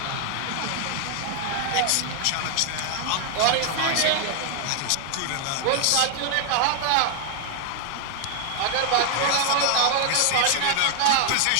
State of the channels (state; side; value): different; both; correlation 0.00